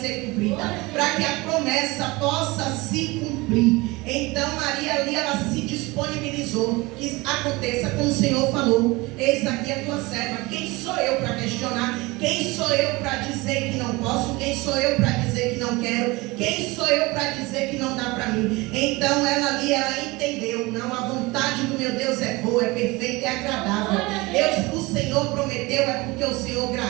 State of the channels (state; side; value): quieter; left; 23.0 dB